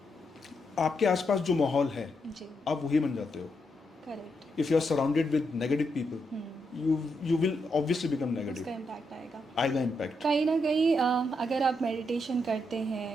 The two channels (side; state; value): both; normal; correlation 0.81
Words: आपके आसपास जो माहौल है जी, आप वही बन जाते हो। Correct. If you are surrounded with negative people, you will obviously become negative। उसका इम्पैक्ट आएगा, आएगा इम्पैक्ट। कहीं ना कहीं। अगर आप मेडिटेशन करते